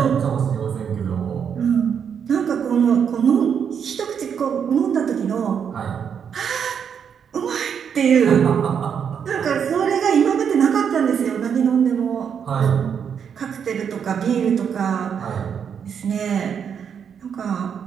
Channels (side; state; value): left; quieter; 7.5 dB